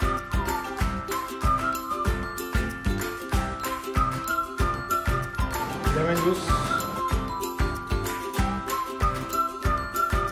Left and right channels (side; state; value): both; identical; correlation 1.00